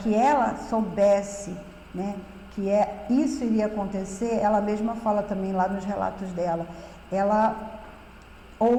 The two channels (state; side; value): identical; both; correlation 1.00